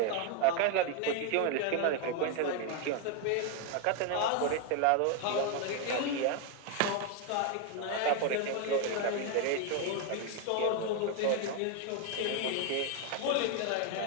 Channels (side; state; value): both; different; correlation 0.01